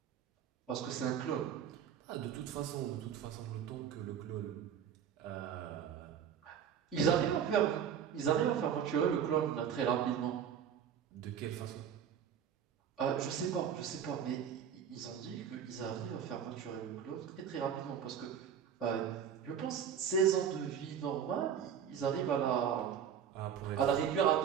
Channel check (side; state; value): left; quieter; 8.4 dB